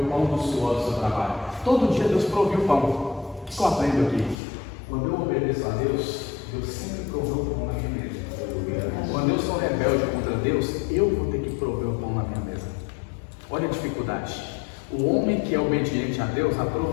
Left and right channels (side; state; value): right; drops out; at 4.4 s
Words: pão do suor do seu trabalho. Todo dia Deus proviu o pão. O que eu aprendo aqui? Quando eu obedeço a Deus, Deus sempre proveu o pão na minha mesa. Quando eu sou rebelde contra Deus, eu vou ter que prover o pão na minha mesa. Olha a dificuldade. O homem que é obediente a Deus, a